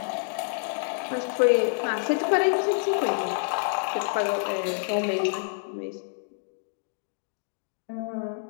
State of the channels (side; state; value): right; silent; digital silence